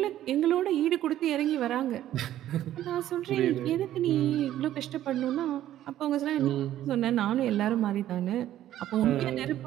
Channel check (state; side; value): quieter; left; 12.6 dB